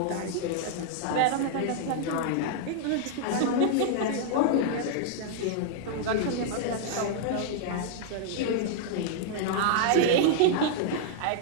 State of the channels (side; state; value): both; different; correlation -0.01